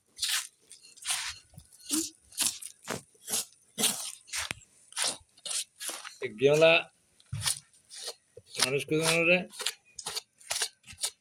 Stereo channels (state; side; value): identical; both; correlation 1.00